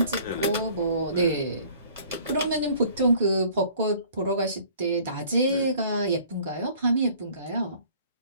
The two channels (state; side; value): inverted; both; correlation -0.53